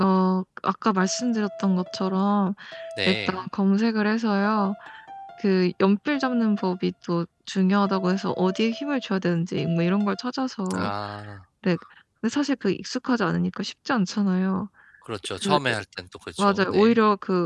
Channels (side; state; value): both; identical; correlation 1.00